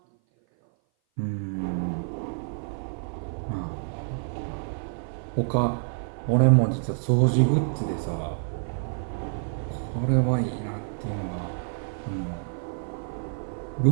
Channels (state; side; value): silent; left; 56 dB below the other